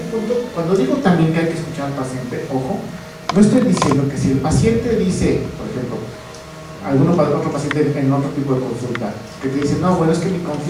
punto, cuando digo también que hay que escuchar al paciente, ojo, no estoy diciendo que si el paciente dice, por ejemplo, otro paciente en otro tipo de consulta, que te dice, no, bueno, es que mi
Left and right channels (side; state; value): both; identical; correlation 1.00